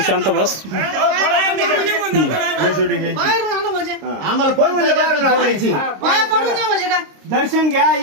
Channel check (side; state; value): left; late; 26 ms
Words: बस आम्हाला फोडायची दर्शन घ्या